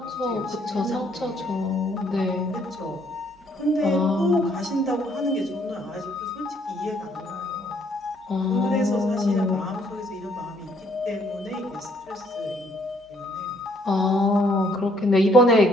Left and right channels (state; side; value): normal; both; correlation 0.66